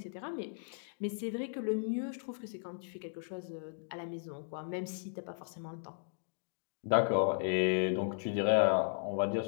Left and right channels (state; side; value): silent; right; digital silence